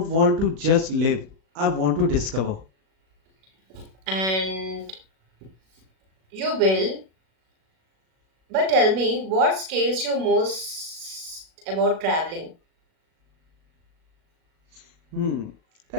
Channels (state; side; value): late; left; 37 ms